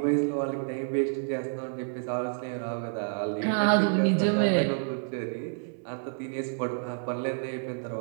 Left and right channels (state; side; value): silent; left; 58 dB below the other